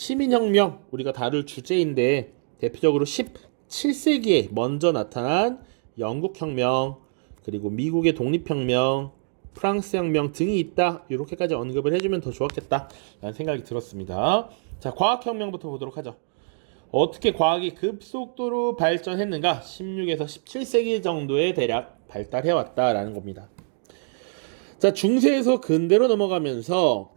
우리가 다룰 주제인데 대표적으로 17세기에 먼저 나타난 영국혁명 그리고 미국의 독립혁명 프랑스 혁명 등이 있다. 이렇게까지 언급을 해주면 더 좋았겠다 라는 생각이 들었습니다. 자, 과학혁명부터 보도록 하죠. 어떻게 과학이 급속도로 발전했는가? 16에서 17세기 정도에 대략 발달해왔다라는 겁니다. 자, 중세에서 근대로 넘어가면서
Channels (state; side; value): silent; left; digital silence